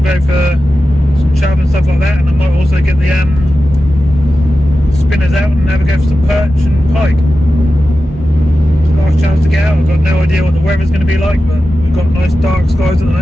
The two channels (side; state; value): both; normal; correlation 0.93